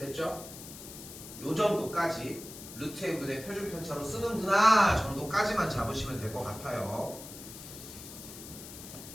요 정도까지 루트 n분의 표준 편차로 쓰는구나 정도까지만 잡으시면 될 것 같아요.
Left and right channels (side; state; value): left; noise; hiss, 13 dB below the sound